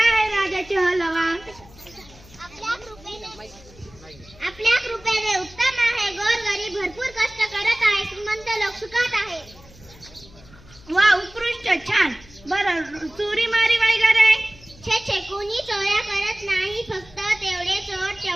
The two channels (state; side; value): noise; left; hum, 23 dB below the sound